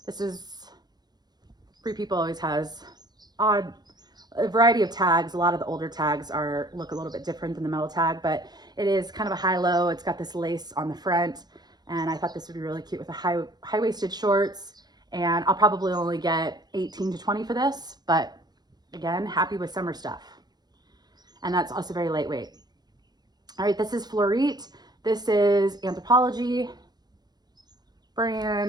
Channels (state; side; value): late; left; 0.20 ms